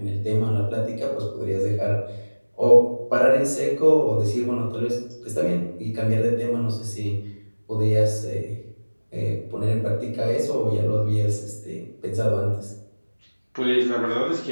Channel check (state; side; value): inverted; both; correlation -1.00